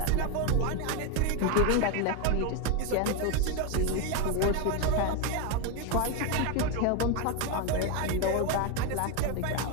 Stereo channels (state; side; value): different; both; correlation 0.02